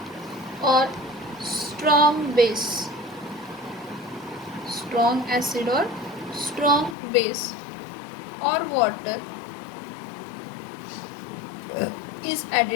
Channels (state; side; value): drops out; right; at 7.0 s